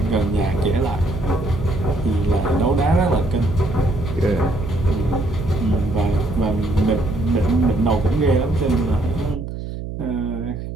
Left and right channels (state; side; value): noise; right; hum, 7 dB below the sound